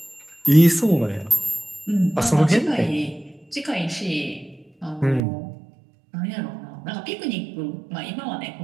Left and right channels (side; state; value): left; drops out; at 5.2 s